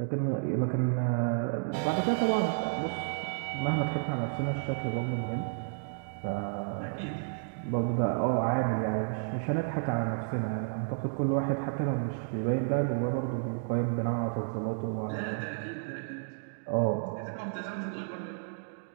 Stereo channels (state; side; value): silent; left; digital silence